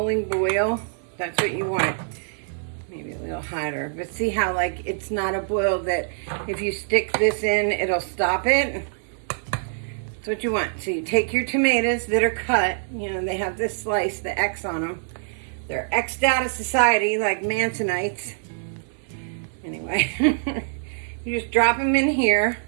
boil? That's what you want. Maybe a little hotter. But see how like it's not a boil that if you stick this in, it'll stop it? That's what you want. So you take your tomatoes that are cut. You know, they have this slice, the X on them. They're X'd out of society like Mansonites. Anyway, you just drop them in here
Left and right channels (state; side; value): silent; left; digital silence